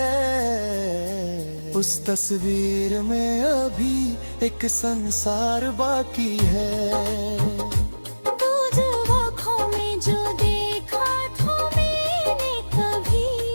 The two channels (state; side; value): inverted; both; correlation -1.00